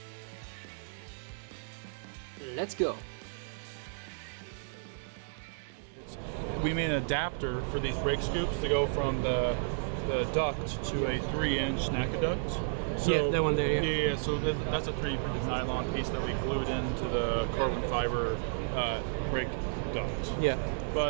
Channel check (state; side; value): silent; left; digital silence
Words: Let's go! We made an adapter for these brake scoops to go from the duct to a 3-inch NACA duct. So, yeah, that one there, yeah. So that's a 3D printed nylon piece that we glued into the carbon fiber brake duct. Yeah.